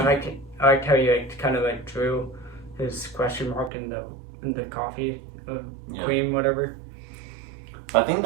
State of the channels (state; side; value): drops out; left; at 3.7 s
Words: like how you like kind of like drew his question mark in the coffee cream, whatever. I think